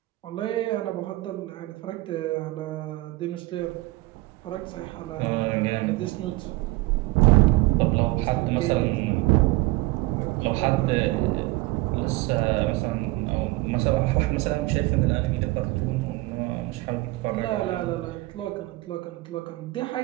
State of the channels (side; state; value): left; quieter; 20.6 dB